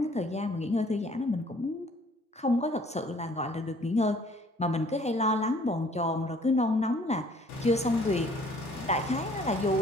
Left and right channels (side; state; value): both; normal; correlation 0.57